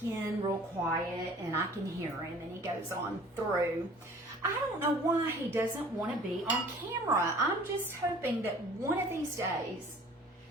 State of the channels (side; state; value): both; normal; correlation 0.49